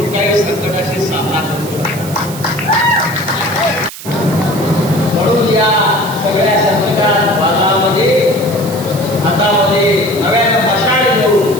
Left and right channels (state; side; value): noise; right; hiss, 13 dB below the sound